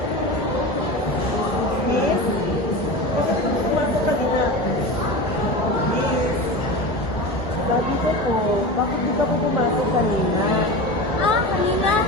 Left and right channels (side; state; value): both; normal; correlation 0.28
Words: Miss? Bakit ka pumasok kanina? Miss? Sabi ko po, bakit di ka po pumasok kanina? kanina.